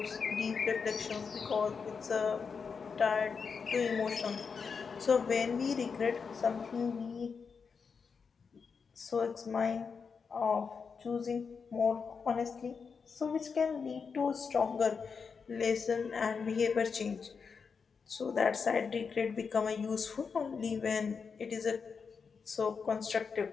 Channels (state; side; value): quieter; right; 5.6 dB